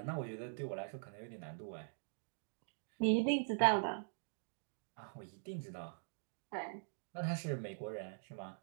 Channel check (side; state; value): left; silent; digital silence